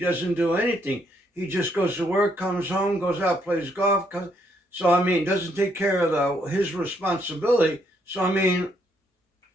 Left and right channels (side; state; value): both; normal; correlation 0.72